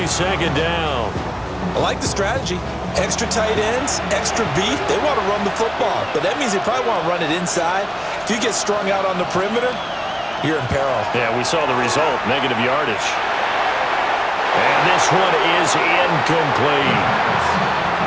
second down. I like the strategy. Extra tight ends, extra beef. They want to run the football, but that means they probably want to run it inside. If you get strung out on the perimeter, you're in peril. Yeah, we saw the result, negative yardage. And this one is incomplete.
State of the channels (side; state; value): both; identical; correlation 1.00